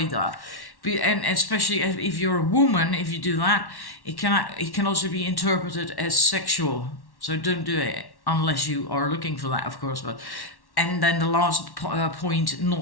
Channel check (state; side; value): late; right; 1.1 ms